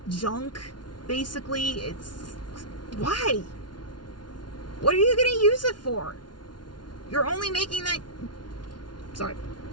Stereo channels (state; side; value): late; right; 0.70 ms